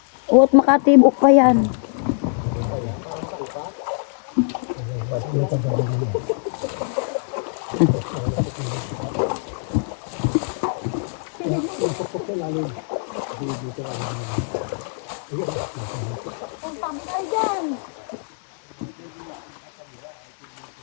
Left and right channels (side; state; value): right; silent; digital silence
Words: Oh, at makatibok pa yan.